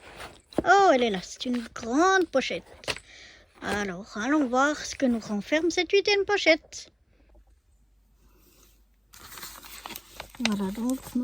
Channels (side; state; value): both; identical; correlation 1.00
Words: Oh, elle est là, c'est une grande pochette. Alors allons voir ce que nous renferme cette 8e pochette. Voilà donc